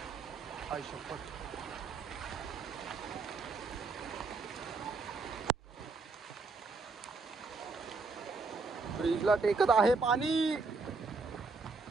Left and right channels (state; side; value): quieter; left; 4.1 dB